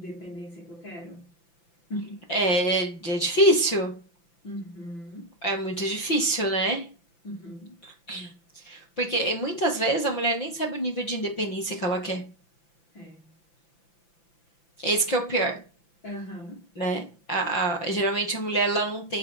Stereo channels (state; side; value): late; right; 5.9 ms